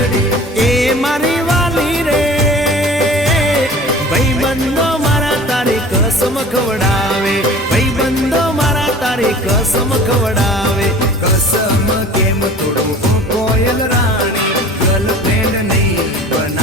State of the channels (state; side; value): normal; both; correlation 0.43